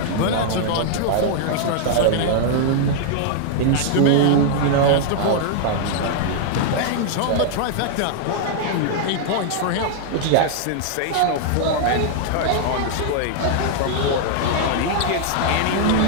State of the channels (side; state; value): both; different; correlation -0.01